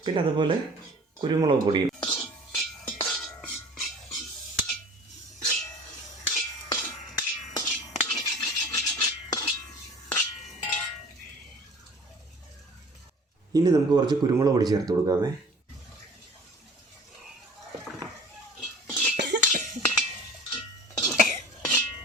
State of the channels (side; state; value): both; normal; correlation 0.45